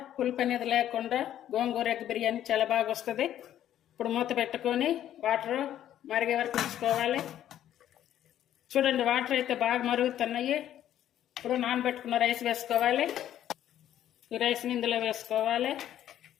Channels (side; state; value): right; quieter; 11.4 dB